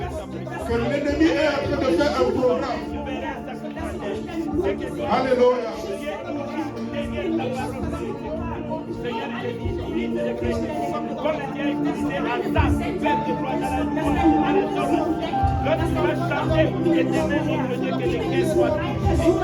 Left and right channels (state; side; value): identical; both; correlation 1.00